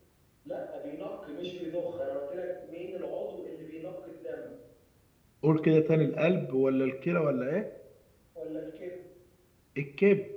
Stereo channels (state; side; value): identical; both; correlation 1.00